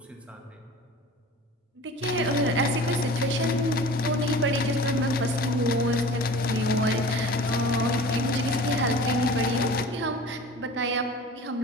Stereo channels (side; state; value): both; normal; correlation 0.40